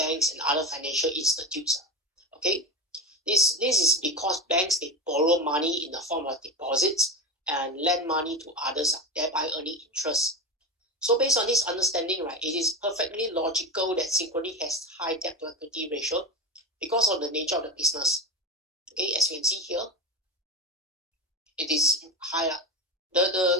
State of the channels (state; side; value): normal; both; correlation 0.21